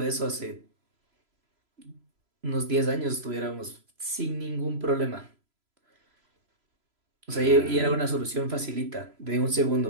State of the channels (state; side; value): late; left; 3.0 ms